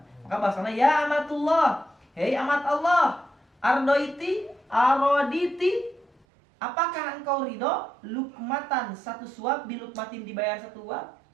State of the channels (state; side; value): drops out; left; at 6.1 s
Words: maka bahasanya ya amatullah, hei amat Allah, ardoiti aroditi, apakah engkau ridho lukmatan, satu suap, bilukmatin dibayar satu